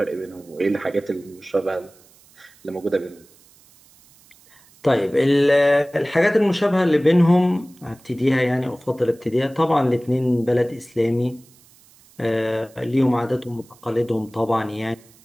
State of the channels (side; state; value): right; noise; hiss, 28 dB below the sound